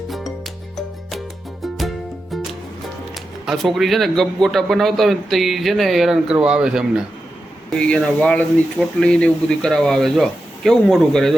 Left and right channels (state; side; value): normal; both; correlation 0.90